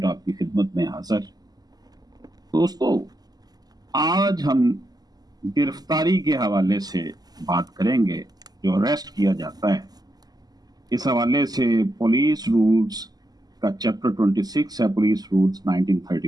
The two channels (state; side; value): late; left; 0.19 ms